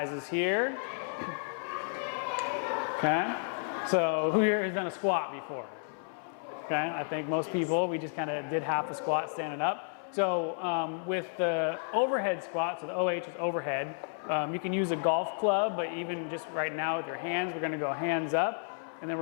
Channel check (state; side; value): silent; right; 56 dB below the other